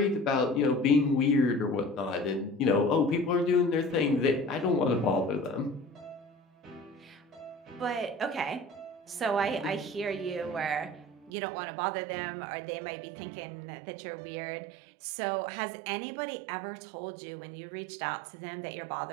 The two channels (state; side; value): drops out; left; at 11.3 s